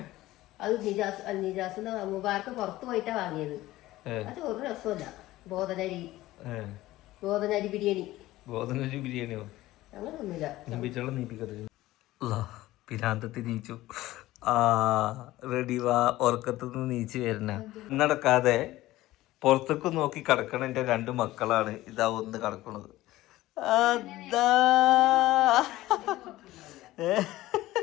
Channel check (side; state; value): right; quieter; 16.7 dB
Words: അത് നിജാസിന്റെ മുബാർക്ക് പുറത്ത് പോയിട്ടാ വാങ്ങിയത്. അത് ഒരു രസമല്ല. ബോധനരി ബിരിയാണി. ബോധനരി ബിരിയാണിയോ? അങ്ങനൊന്നുമില്ല. പിരാന്തത്തി നീച്ചു. റെഡി വാ, ഉറക്കത്തുനിന്ന് നീച്ച് വരണ. നടക്കാതെ പുറത്തേക്ക് നോക്കി കിടക്കണ എൻ്റെ 2 മക്കളാണ്. ഇതാ ഒന്ന് കിടക്കണത്. അതാ